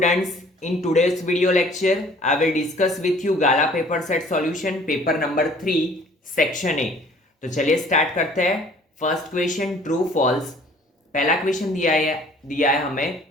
in today's video lecture, I will discuss with you Gala paper set solution paper number 3 section A। तो चलिए स्टार्ट करते हैं। First question true false. पहला क्वेश्चन दिया है हमें,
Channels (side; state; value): both; normal; correlation 0.53